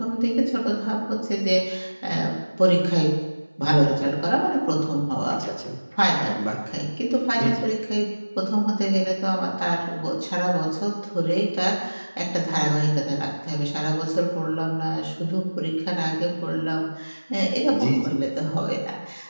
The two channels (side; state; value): both; inverted; correlation -1.00